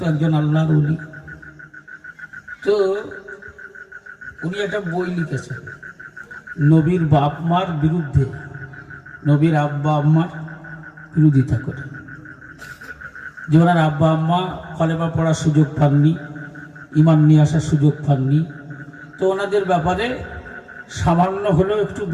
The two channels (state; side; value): identical; both; correlation 1.00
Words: একজন আল্লাহর ওলি। তো উনি একটা বই লিখেছেন নবীর বাপ মার বিরুদ্ধে, নবীর আব্বা আম্মার বিরোধিতা করে। যে ওনার আব্বা আম্মা কলেমা পড়ার সুযোগ পাননি, ইমান নিয়ে আসার সুযোগ পাননি, তো ওনাদের ব্যাপারে সামান্য হলেও একটু